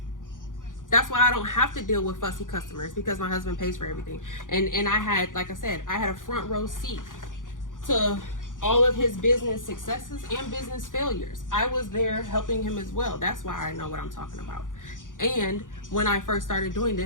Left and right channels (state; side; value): late; right; 0.88 ms